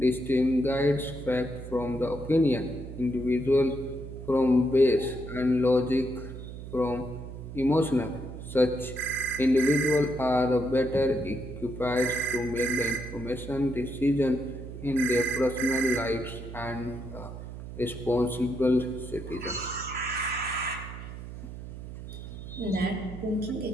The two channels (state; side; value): noise; right; hum, 11 dB below the sound